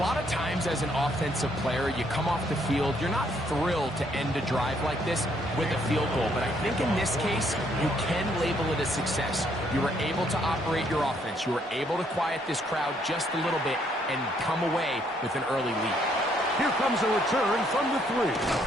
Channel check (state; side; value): normal; both; correlation 0.69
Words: of times as an offensive player, you come off the field, you're not thrilled to end a drive like this with a field goal. But I think in this case, you can label it a success. You were able to operate your offense. You were able to quiet this crowd just a little bit and come away with an early lead. Here comes a return from the 3.